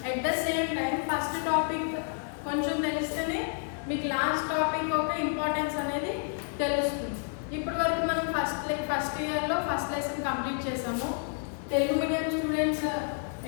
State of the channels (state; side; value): silent; right; 58 dB below the other